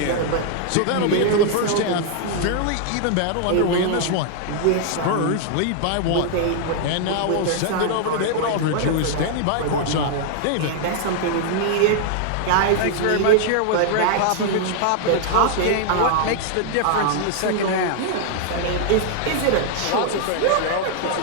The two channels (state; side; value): different; both; correlation -0.01